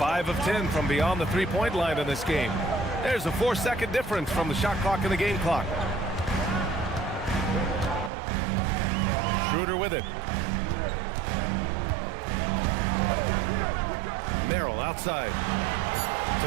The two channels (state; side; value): drops out; left; at 8.1 s